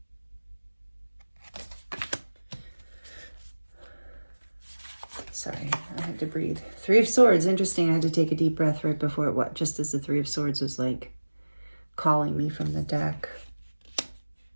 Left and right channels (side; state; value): both; inverted; correlation -1.00